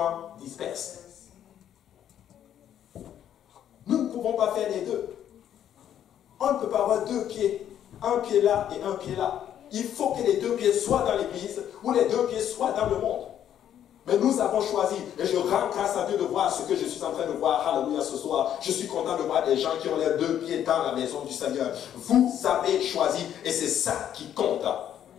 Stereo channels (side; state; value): right; quieter; 10.2 dB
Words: disperse. Nous ne pouvons pas faire les deux. On ne peut pas avoir deux pieds, un pied là et un pied là. Il faut que les deux pieds soient dans l'église ou les deux pieds soient dans le monde. Mais nous avons choisi, et je rends grâce à Dieu de voir ce que je suis en train de voir, alléluia, ce soir. Je suis content de voir des gens qui ont les deux pieds dans la maison du Seigneur. Vous avez choisi, et c'est ça qui compte.